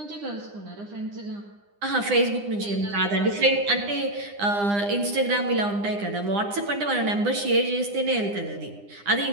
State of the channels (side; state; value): left; late; 9.9 ms